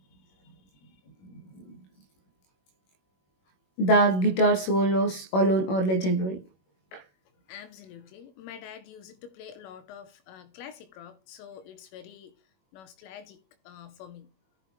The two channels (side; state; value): right; late; 21 ms